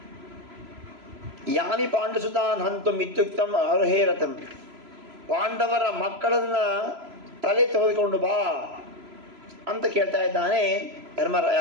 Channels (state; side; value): late; left; 3.0 ms